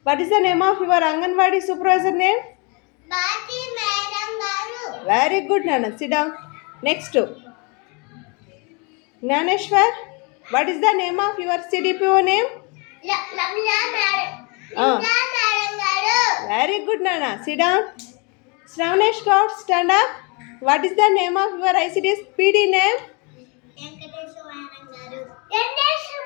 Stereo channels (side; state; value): right; quieter; 31.8 dB